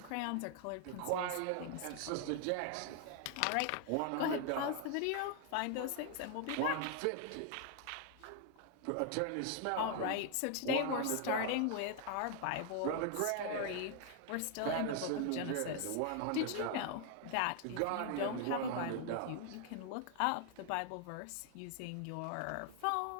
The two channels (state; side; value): different; both; correlation 0.00